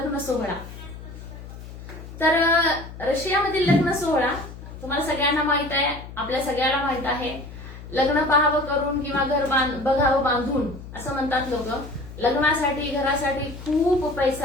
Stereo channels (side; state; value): left; noise; hum, 13 dB below the sound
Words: सोहळा. तर रशियामधील लग्न सोहळा तुम्हाला सगळ्यांना माहित आहे, आपल्या सगळ्याला माहित आहे. लग्न पाहावं करून किंवा घर बघावं बांधून असं म्हणतात लोक. लग्नासाठी घरासाठी खूप